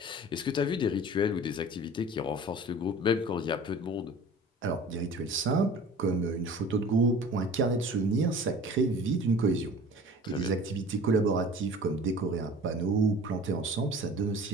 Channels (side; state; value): both; normal; correlation 0.43